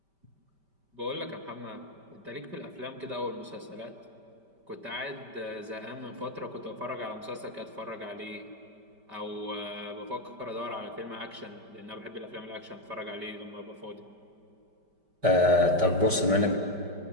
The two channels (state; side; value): late; left; 5.1 ms